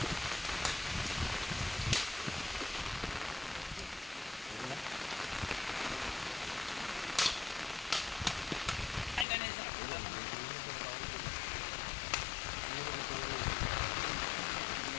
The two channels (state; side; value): drops out; right; at 9.2 s